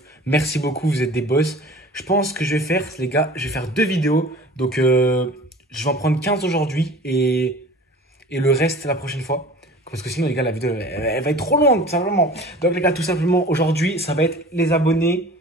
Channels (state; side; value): normal; both; correlation 0.42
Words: Merci beaucoup, vous êtes des boss. Je pense que je vais faire, les gars, je vais faire 2 vidéos. Donc, je vais en prendre 15 aujourd'hui et le reste la prochaine fois. Parce que sinon, les gars, la vidéo, elle va être trop longue, tout simplement. Donc, les gars, tout simplement, aujourd'hui, ça va être les abonnés.